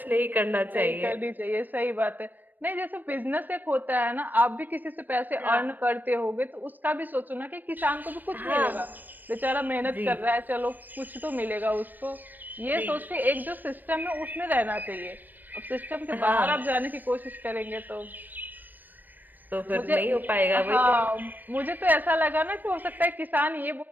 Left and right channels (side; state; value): left; late; 0.089 ms